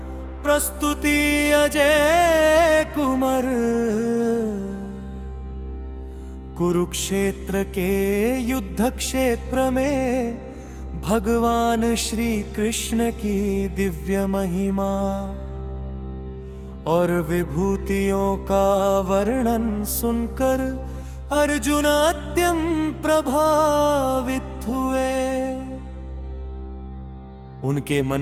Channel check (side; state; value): both; identical; correlation 1.00